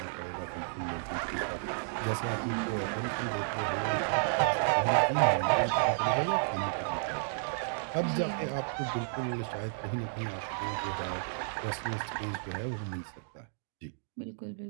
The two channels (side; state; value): left; silent; digital silence